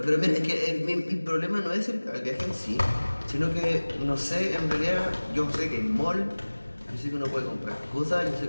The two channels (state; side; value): inverted; both; correlation -1.00